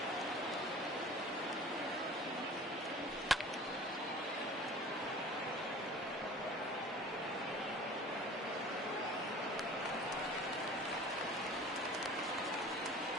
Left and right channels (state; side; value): normal; both; correlation 0.43